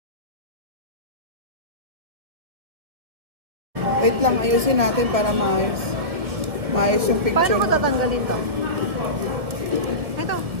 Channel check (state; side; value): late; left; 1.7 ms